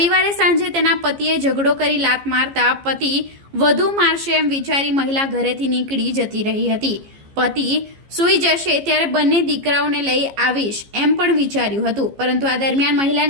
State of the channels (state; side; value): late; left; 15 ms